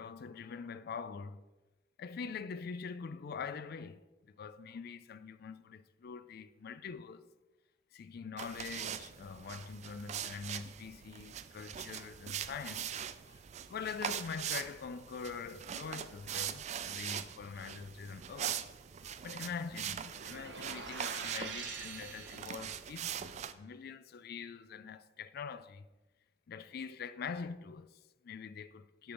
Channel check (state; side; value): normal; both; correlation 0.14